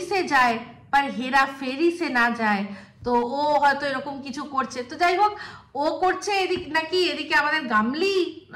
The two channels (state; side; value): identical; both; correlation 1.00